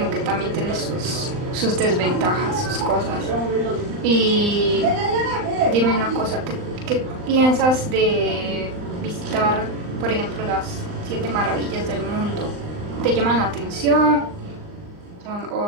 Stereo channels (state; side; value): late; left; 39 ms